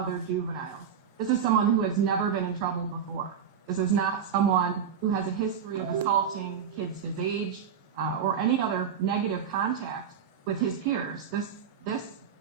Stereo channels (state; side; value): quieter; left; 7.6 dB